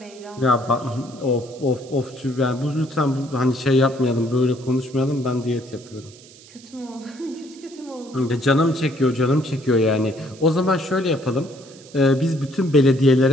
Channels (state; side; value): noise; right; hiss, 22 dB below the sound